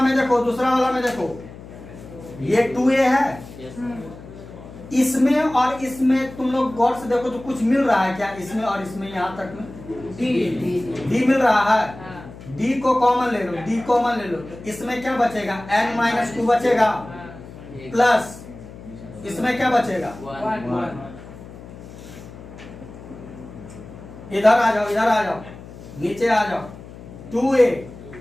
में देखो, ये 2a है, इसमें और इसमें तुम लोग गौर से देखो तो कुछ मिल रहा है क्या, इसमें और इसमें यहाँ तक में d मिल रहा है, d को कॉमन ले लो, तो इसमें क्या बचेगा n माइनस 2 बचेगा, प्लस इसमें क्या बचेगा, इधर आ जाओ, नीचे आ जाओ, 2a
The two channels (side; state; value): left; noise; hum, 16 dB below the sound